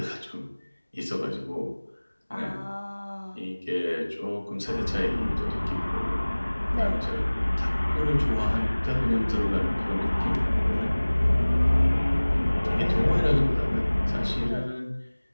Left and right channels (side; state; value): both; inverted; correlation -1.00